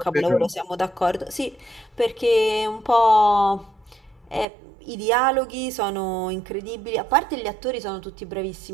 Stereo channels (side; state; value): left; drops out; at 4.5 s